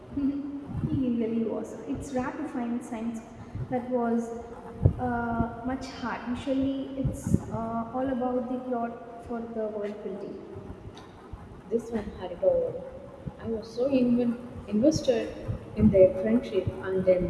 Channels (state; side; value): identical; both; correlation 1.00